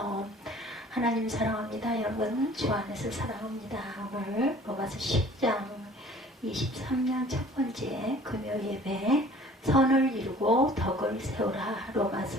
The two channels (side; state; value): both; normal; correlation 0.50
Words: 하나님 사랑합니다. 여러분 주 안에서 사랑합니다. 오늘 로마서 10장 23년 첫 번째 금요 예배, 선을 이루고 덕을 세우라.